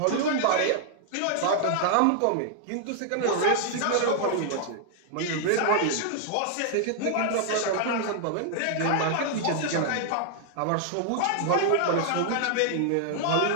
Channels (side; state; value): both; different; correlation 0.00